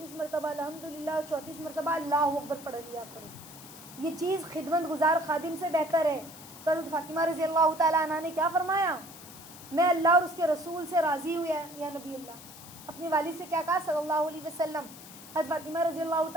मरतबा अल्हम्दुलिल्लाह, 34 मरतबा अल्लाहु अकबर पढ़ लिया करो। ये चीज़ खिदमत गुजार खादिम से बेहतर है। तो हज़रत फ़ातिमा रज़ी अल्लाह तआला अन्हा ने क्या फरमाया? मैं अल्लाह और उसके रसूल से राज़ी हुई है या नबी अल्लाह। अपनी वालिद से क्या कहा सल्लल्लाहु अलैहि वसल्लम? हज़रत फ़ातिमा रज़ी अल्लाह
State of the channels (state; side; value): noise; left; hiss, 17 dB below the sound